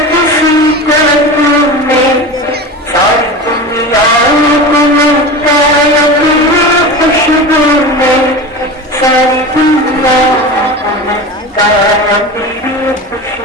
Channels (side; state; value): both; normal; correlation 0.29